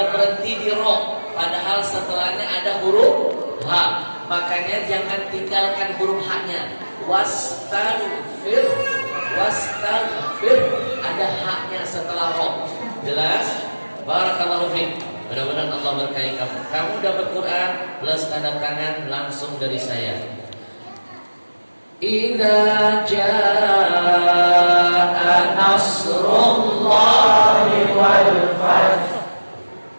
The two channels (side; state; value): both; inverted; correlation -1.00